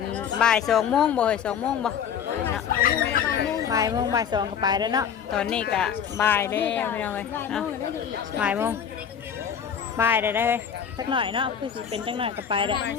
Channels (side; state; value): right; quieter; 7.9 dB